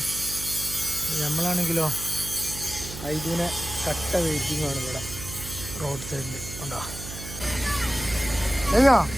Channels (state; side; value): noise; right; hum, 11 dB below the sound